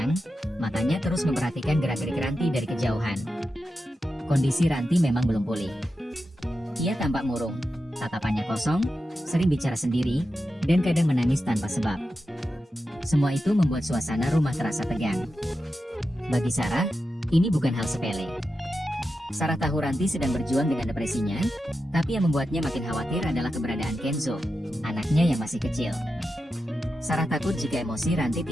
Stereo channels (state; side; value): normal; both; correlation 0.90